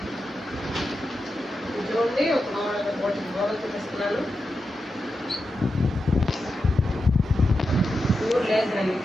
చూడండి, ఒక మోడల్ చూపిస్తున్నాను. ప్యూర్ లేదండి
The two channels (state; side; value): normal; both; correlation 0.89